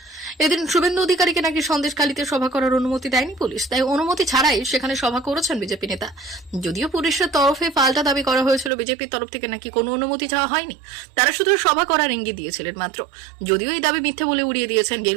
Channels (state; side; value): drops out; left; at 8.7 s